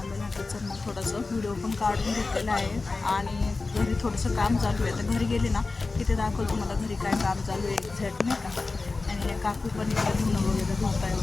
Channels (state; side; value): quieter; right; 3.7 dB